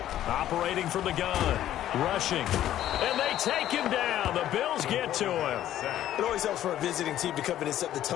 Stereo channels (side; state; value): right; quieter; 12.3 dB